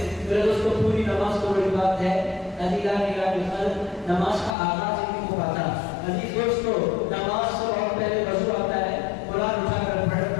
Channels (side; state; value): right; drops out; at 4.5 s